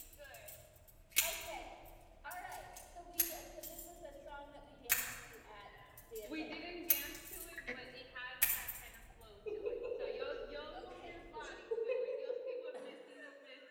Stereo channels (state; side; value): identical; both; correlation 1.00